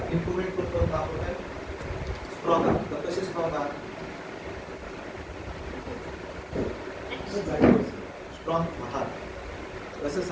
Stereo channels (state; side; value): identical; both; correlation 1.00